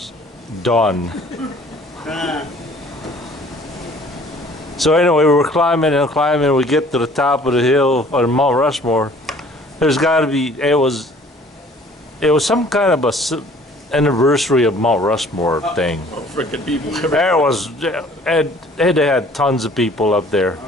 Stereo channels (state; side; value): normal; both; correlation 0.53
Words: done. So anyway, we were climbing and climbing. We get to the top of the hill on Mount Rushmore. There's got to be. It was some kind of anniversary of Mount Rushmore thing. Oh, freaking people. There was. It had tons of people up there.